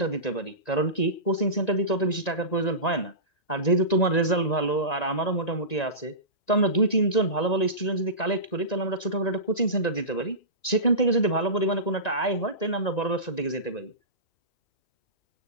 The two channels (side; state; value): right; late; 1.9 ms